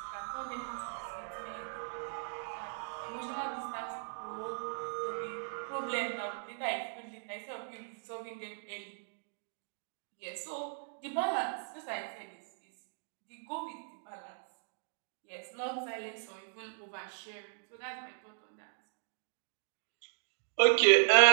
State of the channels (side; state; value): left; silent; digital silence